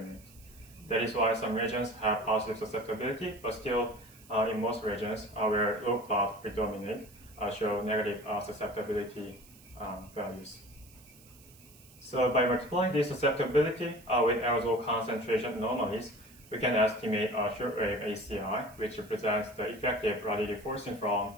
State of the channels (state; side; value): noise; right; hiss, 24 dB below the sound